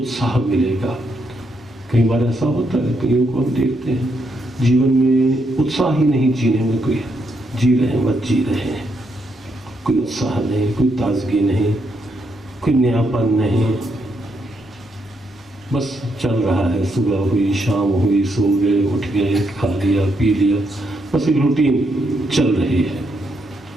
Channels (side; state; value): both; normal; correlation 0.78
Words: मिलेगा। कई बार ऐसा होता है, कईयों को हम देखते हैं जीवन में उत्साह ही नहीं, जीने में कोई जी रहे हैं, मत जी रहे हैं, कोई उत्साह नहीं, कोई ताजगी नहीं, कोई नयापन नहीं, बस चल रहा है। सुबह हुई, शाम हुई, सो गए, उठ गए, खा लिया, पी लिया, बस एक रूटीन चल रही है।